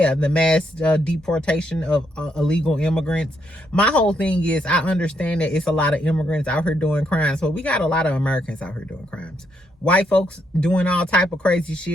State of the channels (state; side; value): normal; both; correlation 0.76